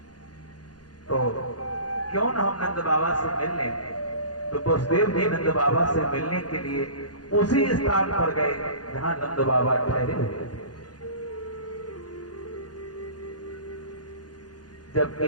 तो क्यों न हम नंद बाबा से मिल लें। तो वसुदेव जी नंद बाबा से मिलने के लिए उसी स्थान पर गए जहां नंद बाबा ठहरे हुए थे। जब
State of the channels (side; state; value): right; late; 0.69 ms